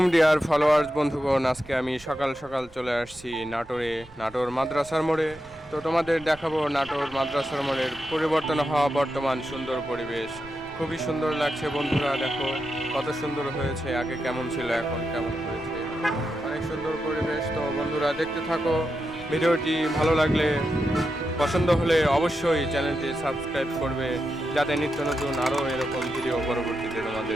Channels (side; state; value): right; noise; rumble, 22 dB below the sound